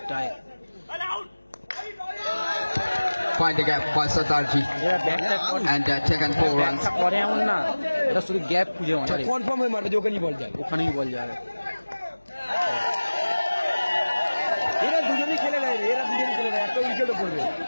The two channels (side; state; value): both; inverted; correlation -1.00